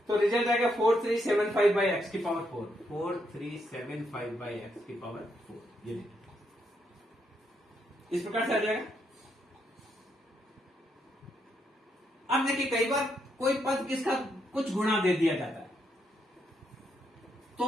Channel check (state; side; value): normal; both; correlation 0.78